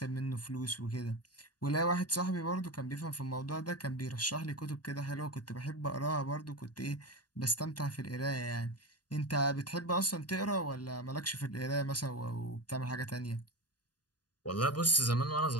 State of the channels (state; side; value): late; right; 0.69 ms